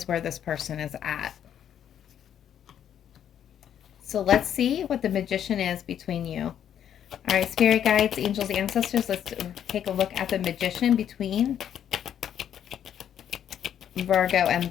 where this person is at. So let's see what the Magician is between you. All right, spirit guides, angels, ancestors, let's take a look at the Magician between Virgo and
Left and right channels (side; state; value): right; quieter; 9.6 dB